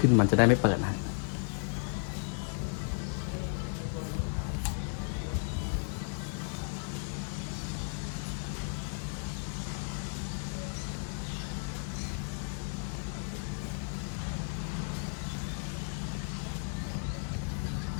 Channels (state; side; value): silent; right; 55 dB below the other